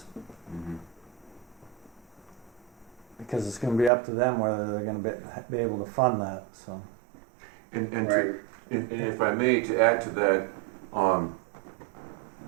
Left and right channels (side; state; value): left; drops out; at 3.9 s